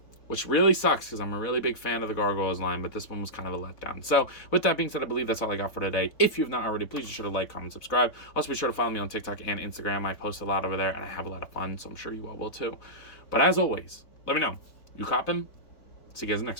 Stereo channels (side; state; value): right; late; 4.0 ms